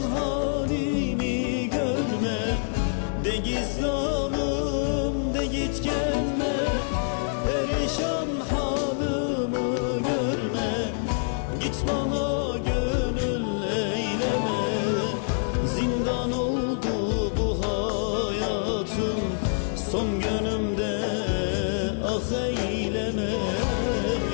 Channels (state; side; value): silent; right; 61 dB below the other